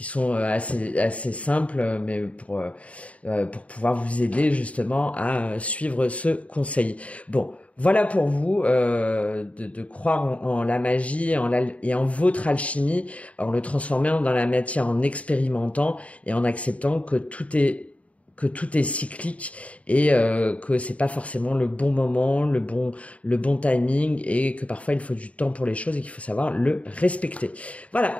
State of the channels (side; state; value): right; late; 0.066 ms